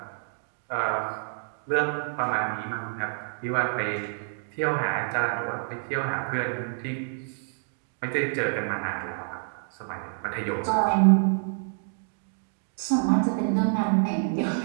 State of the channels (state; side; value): silent; left; digital silence